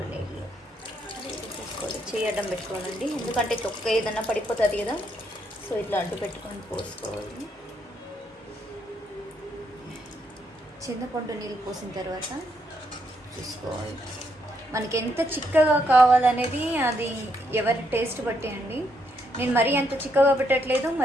నీళ్ళు వేసుకోవాలి. చేయి అడ్డం పెట్టుకోవాలండి, ఎందుకంటే తొక్క ఏదన్నా పడిపోతుంది కదా, సో ఇట్లా అడ్డు పెట్టుకొని పోసుకోవాలి. చింతపండు నీళ్ళు పోసిన తర్వాత చూసుకోవాలి మనకి ఎంత చిక్కగా కావాలనేది, అది ఎవరి టేస్ట్ బట్టి అండి. నేను మరీ అంత చిక్కగా పెట్టట్లేదు,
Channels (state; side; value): normal; both; correlation 0.75